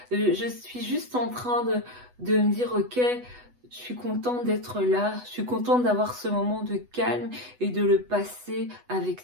Je suis juste en train de me dire, ok, je suis contente d'être là. Je suis contente d'avoir ce moment de calme et de le passer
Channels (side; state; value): left; late; 8.1 ms